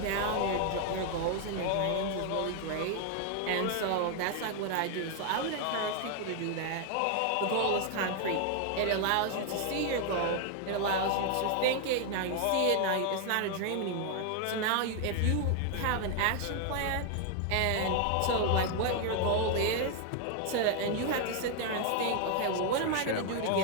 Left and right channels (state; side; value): different; both; correlation 0.00